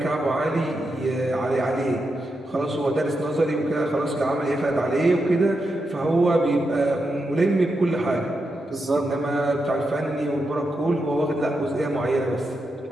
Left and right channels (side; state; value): both; normal; correlation 0.86